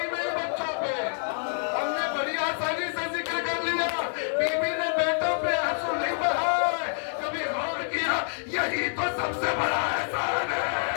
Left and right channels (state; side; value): silent; right; 60 dB below the other